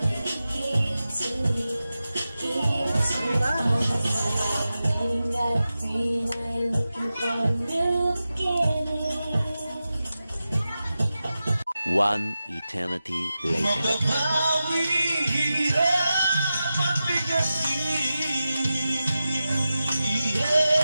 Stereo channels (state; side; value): inverted; both; correlation -0.92